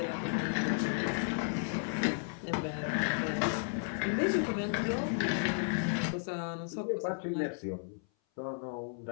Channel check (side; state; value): right; silent; 55 dB below the other